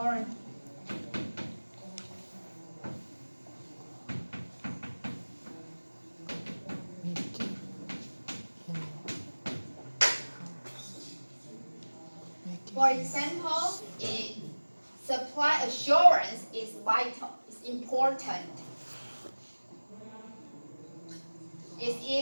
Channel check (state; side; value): inverted; both; correlation -1.00